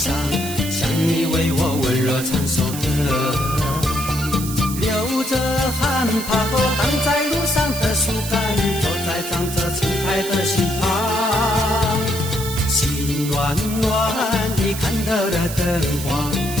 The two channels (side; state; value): right; noise; hiss, 9 dB below the sound